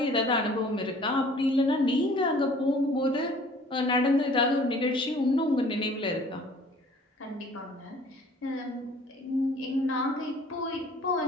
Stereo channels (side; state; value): both; normal; correlation 0.52